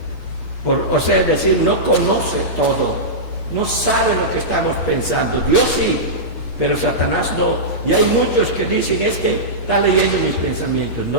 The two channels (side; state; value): right; late; 8.4 ms